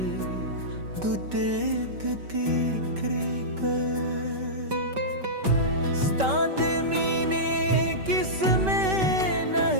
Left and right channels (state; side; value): late; left; 5.2 ms